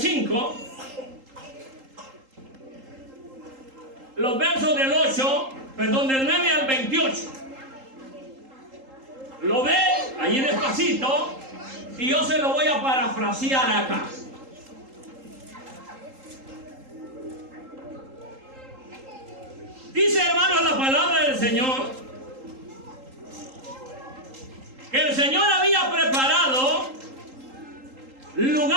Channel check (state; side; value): late; left; 3.8 ms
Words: los versos del 9 al 28. Lo ve allí despacito y yo se lo voy a parafrasear acá. Dice, hermanos, la palabra del Señor que el Señor había preparado